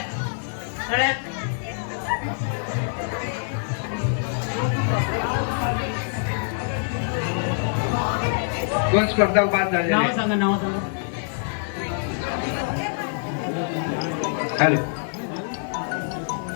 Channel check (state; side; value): silent; right; digital silence